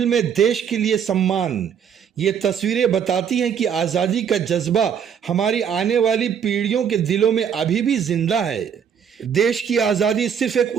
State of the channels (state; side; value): quieter; left; 7.8 dB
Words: में देश के लिए सम्मान। ये तस्वीरें बताती हैं कि आज़ादी का जज्बा हमारी आने वाली पीढ़ियों के दिलों में अभी भी जिंदा है। देश की आज़ादी सिर्फ एक